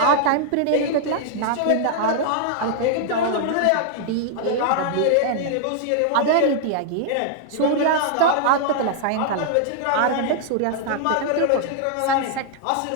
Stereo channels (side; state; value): both; different; correlation 0.00